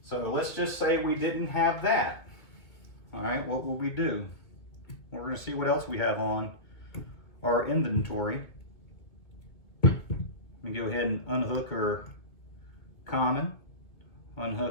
So let's just say we didn't have that. All right, what will we do? We're going to see what else we have on our inventory. Let me go ahead and unhook our common,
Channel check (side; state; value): right; late; 2.4 ms